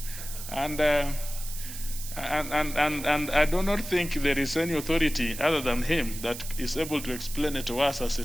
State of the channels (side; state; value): right; noise; hiss, 10 dB below the sound